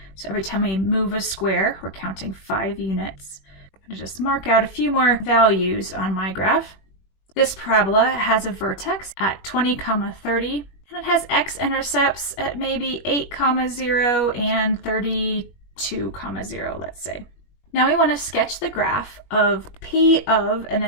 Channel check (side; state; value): right; late; 21 ms